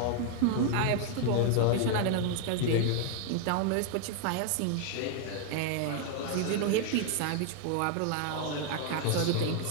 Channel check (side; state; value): both; different; correlation 0.00